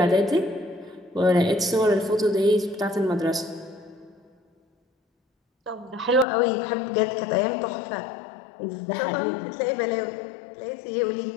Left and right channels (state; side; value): drops out; right; at 6.2 s